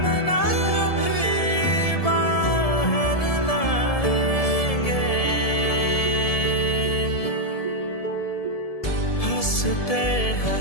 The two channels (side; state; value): right; late; 1.7 ms